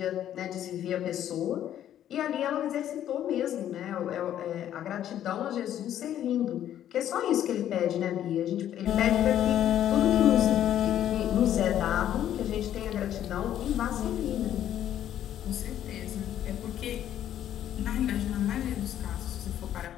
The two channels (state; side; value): quieter; right; 11.1 dB